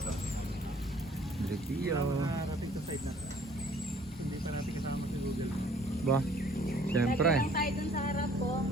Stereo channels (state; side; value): normal; both; correlation 0.56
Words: Dripio. Nakarating sa side na. Hindi pa natin kasama si Google. Ba? Siyempre. Lagi lang tayo dun sa harap ko.